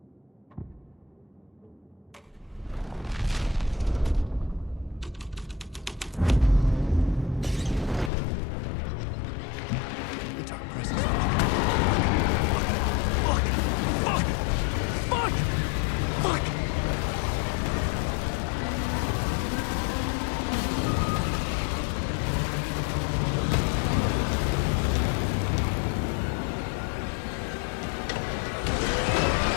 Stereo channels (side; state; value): right; drops out; at 8.1 s